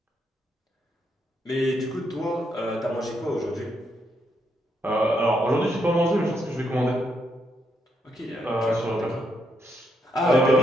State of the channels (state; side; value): normal; both; correlation 0.78